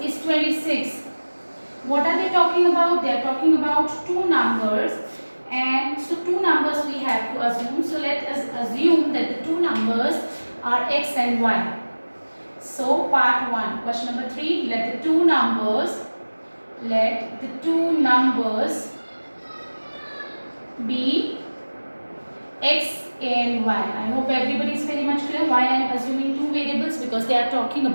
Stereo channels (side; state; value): both; inverted; correlation -1.00